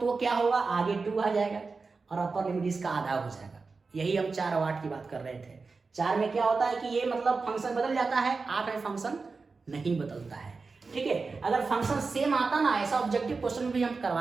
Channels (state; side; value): quieter; left; 4.3 dB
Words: क्या होगा, आगे 2 आ जाएगा और अपर लिमिट इसका आधा हो जाएगा। यही हम 4 और 8 की बात कर रहे थे। 4 में क्या होता है कि ये मतलब फंक्शन बदल जाता है, 8 में फंक्शन नहीं बदलता है, ठीक है। अगर फंक्शन सेम आता ना, ऐसा ऑब्जेक्टिव क्वेश्चन भी हम